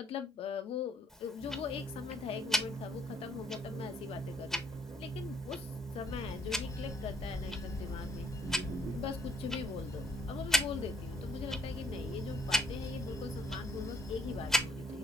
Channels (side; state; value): both; normal; correlation 0.66